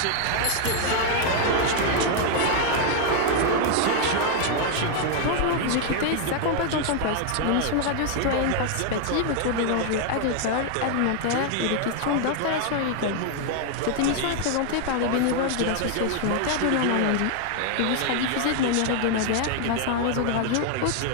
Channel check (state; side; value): different; both; correlation 0.00